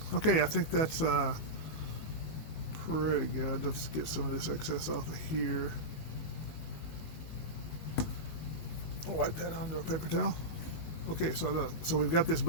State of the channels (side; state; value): right; late; 19 ms